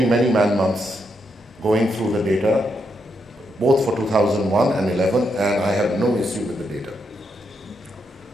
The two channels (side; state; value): both; normal; correlation 0.80